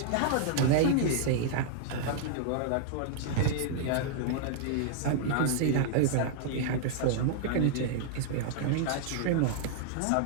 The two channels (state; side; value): different; both; correlation -0.01